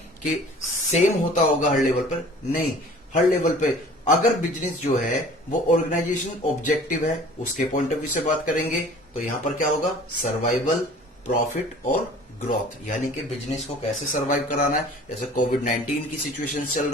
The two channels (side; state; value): both; normal; correlation 0.47